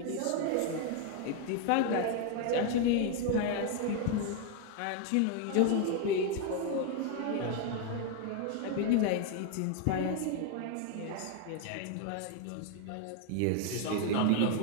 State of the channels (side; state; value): both; different; correlation 0.01